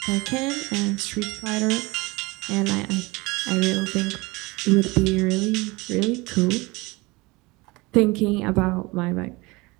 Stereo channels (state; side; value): quieter; left; 23.7 dB